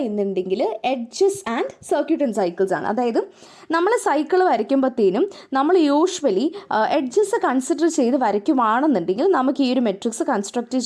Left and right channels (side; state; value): both; identical; correlation 1.00